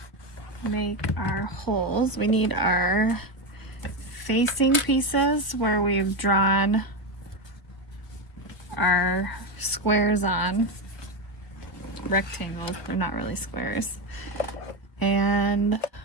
make our holes. We need our facing pieces where we've drawn our squares on, rectangles, they're not really squares. And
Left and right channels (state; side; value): late; right; 1.0 ms